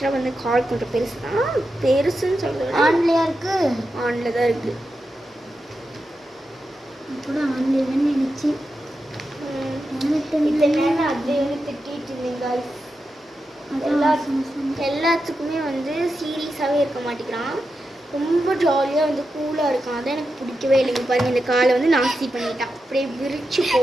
வந்து கால் கொஞ்சம் பெருசு தான். பெருசுன்னு சொல்கிறது ஆன்லையா இருக்கு. ஆன்ல தான் இருக்குது. கூட ஆன்லைன்னு நினச்சி இந்த நேரம் அது திட்டிட்டு இருந்தீங்க. எல்லாத்துக்குமே வந்து சீரியஸாகவே இருக்க மாட்டேங்கிறான். ரொம்ப ஜாலியாக வந்து கூலாக இருக்கான். அதான் எனக்கு பிடிக்கவே இல்லைங்க. பாருங்க இந்த காலை வந்து நாஸ்தி பண்ணிட்டான். அப்படியே விரிச்சு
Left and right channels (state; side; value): normal; both; correlation 0.89